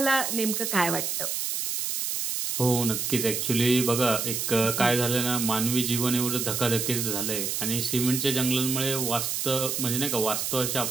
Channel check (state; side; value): noise; right; hiss, 1 dB below the sound